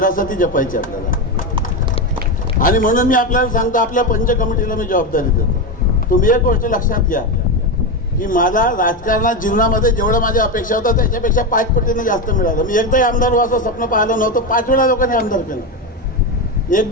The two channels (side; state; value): both; normal; correlation 0.13